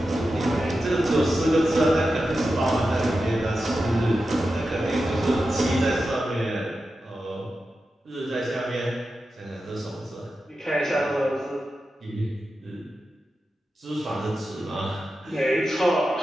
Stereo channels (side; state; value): both; normal; correlation 0.91